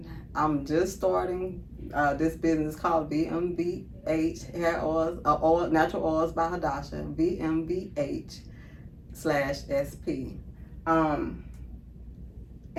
I'm just starting this business called VMVH Hair Oils, Natural Oils by Hadasha, VMVH/SP.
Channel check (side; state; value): both; identical; correlation 1.00